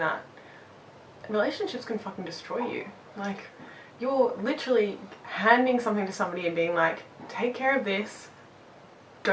relationships can fucking destroy you. Like you're literally handing something to somebody and being like, take care of this,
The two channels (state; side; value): identical; both; correlation 1.00